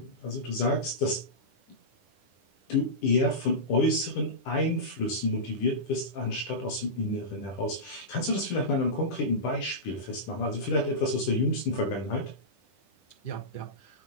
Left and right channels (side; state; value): right; late; 10 ms